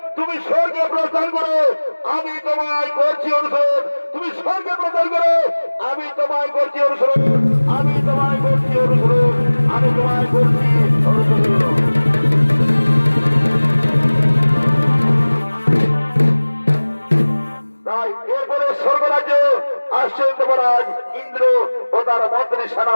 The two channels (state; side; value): inverted; both; correlation -1.00